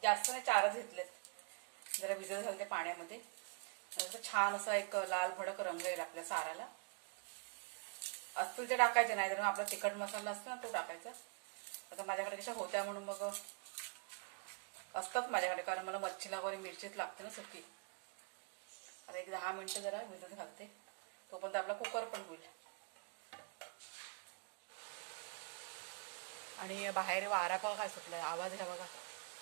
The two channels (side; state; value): left; quieter; 39.6 dB